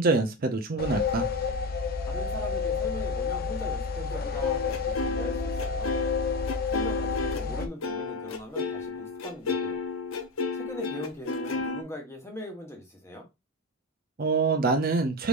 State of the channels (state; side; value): normal; both; correlation 0.19